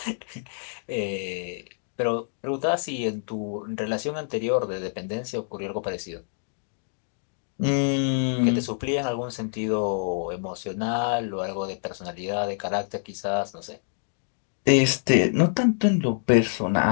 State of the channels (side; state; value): right; silent; digital silence